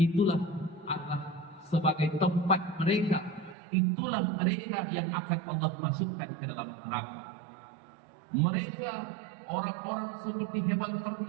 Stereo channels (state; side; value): drops out; left; at 3.6 s